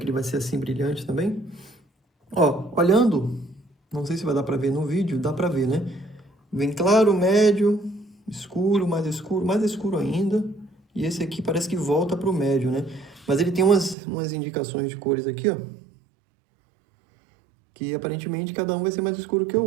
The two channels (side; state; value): left; drops out; at 14.0 s